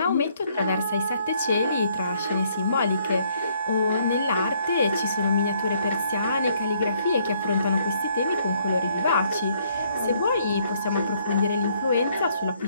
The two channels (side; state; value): both; inverted; correlation -0.67